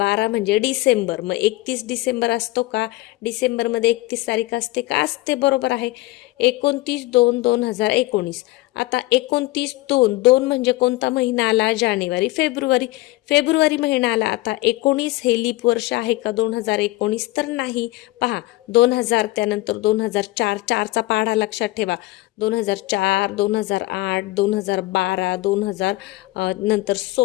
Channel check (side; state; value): right; quieter; 19.4 dB